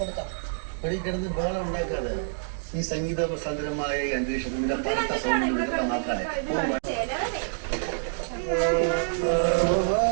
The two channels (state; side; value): silent; left; digital silence